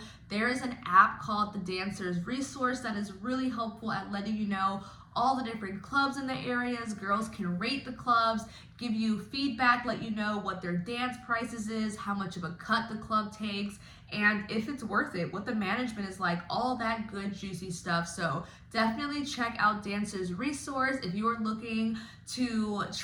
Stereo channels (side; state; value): both; identical; correlation 1.00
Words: There is an app called the Dancers Resource that is really helpful at letting you know all the different clubs in the areas. Girls can rate the clubs, give you feedback, let you know what their dance prices is, how much of a cut the club takes, and if it's worth it, what the management is like, all that good juicy stuff. So definitely check out Dancers Resource if you are looking to